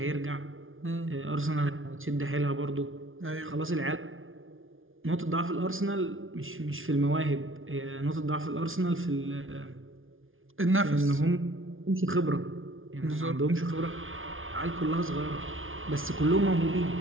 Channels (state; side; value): late; left; 0.58 ms